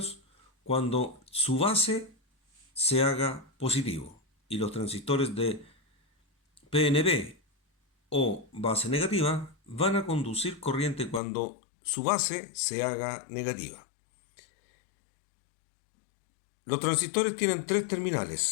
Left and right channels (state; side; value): drops out; right; at 11.2 s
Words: cuando su base se haga positivo, y los transistores de PNP o base negativa van a conducir corriente cuando su base se haga negativa. Los transistores tienen tres